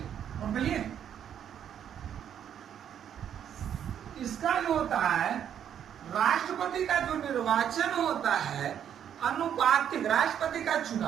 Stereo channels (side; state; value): left; quieter; 9.3 dB